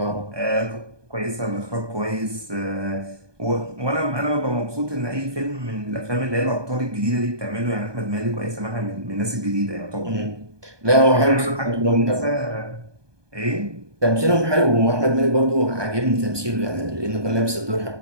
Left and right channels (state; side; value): late; left; 1.2 ms